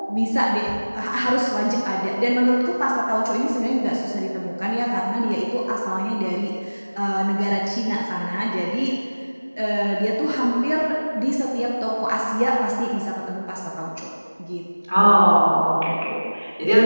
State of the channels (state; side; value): inverted; both; correlation -1.00